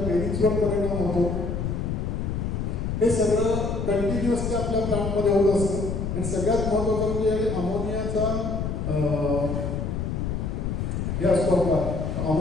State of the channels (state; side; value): noise; left; rumble, 2 dB below the sound